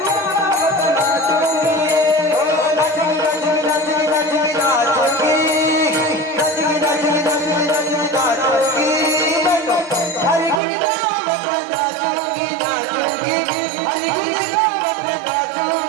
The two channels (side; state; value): left; drops out; at 10.6 s